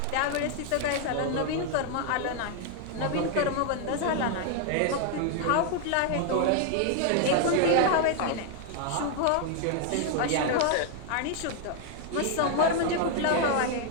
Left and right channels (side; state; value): both; different; correlation 0.00